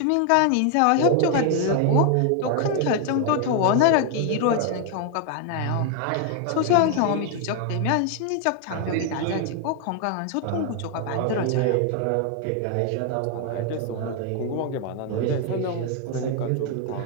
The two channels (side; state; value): both; different; correlation 0.00